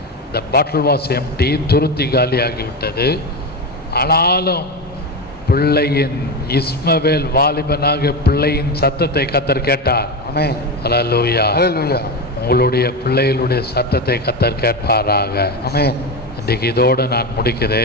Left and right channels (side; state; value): both; normal; correlation 0.17